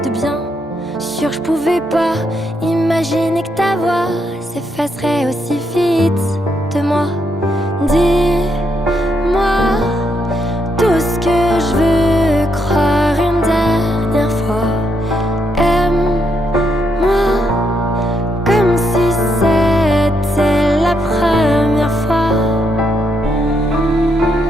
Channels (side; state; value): both; normal; correlation 0.78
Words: de bien. Sûr je pouvais pas imaginer que ta voix s'effacerait aussi vite de moi. Dis-moi tout ce que je veux croire une dernière fois. Aime-moi comme si c'était la première fois.